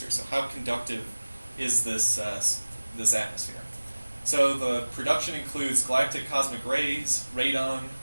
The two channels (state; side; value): inverted; both; correlation -1.00